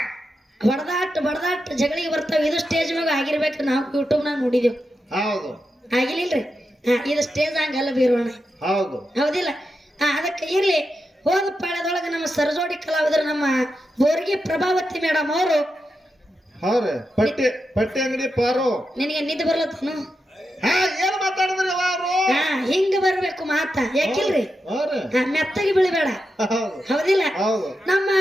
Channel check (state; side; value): normal; both; correlation 0.88